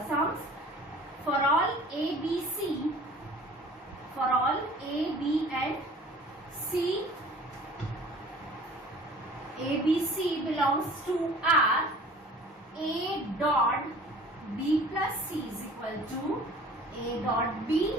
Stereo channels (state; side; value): normal; both; correlation 0.47